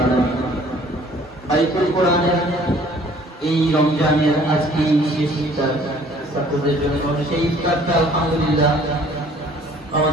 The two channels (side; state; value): both; normal; correlation 0.55